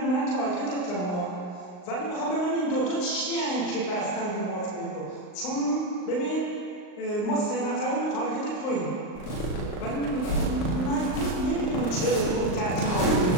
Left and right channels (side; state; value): right; late; 39 ms